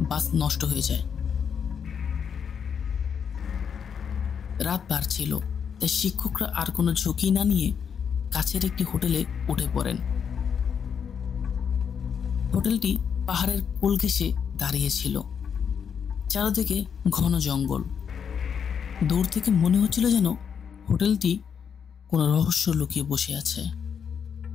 বাস নষ্ট হয়ে যায়। রাত বাড়ছিল, তাই শিক্ষকরা আর কোনো ঝুঁকি না নিয়ে কাছের একটি হোটেলে উঠে পড়েন। হোটেলটি পাহাড়ের কোল ঘেঁষে দাঁড়িয়েছিল, চারদিকে ঘন জঙ্গল। দূর থেকে মনে হচ্ছিল যেন হোটেলটি কোনো রহস্য লুকিয়ে বসে আছে।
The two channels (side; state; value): right; quieter; 7.2 dB